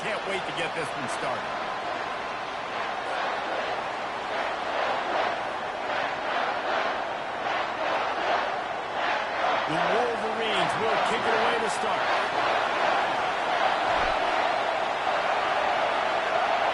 can't wait to get this one started. The Wolverines will kick it away to start.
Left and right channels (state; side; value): identical; both; correlation 1.00